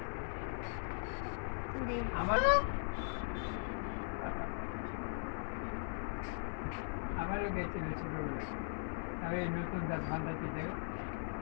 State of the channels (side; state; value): right; silent; 52 dB below the other